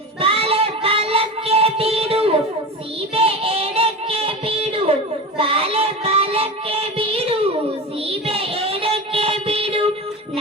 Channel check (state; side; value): normal; both; correlation 0.27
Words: ಬಾಲೆ ಬಾಲಕ್ಕೆ ಬೀಡು ಸೀಬೆ ಎಡಕ್ಕೆ ಬೀಡು, ಬಾಲೆ ಬಾಲಕ್ಕೆ ಬೀಡು ಸೀಬೆ ಎಡಕ್ಕೆ ಬೀಡು,